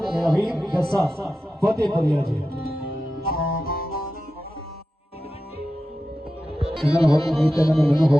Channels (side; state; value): both; normal; correlation 0.92